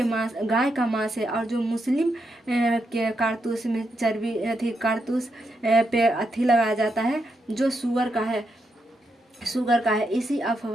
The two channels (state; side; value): normal; both; correlation 0.82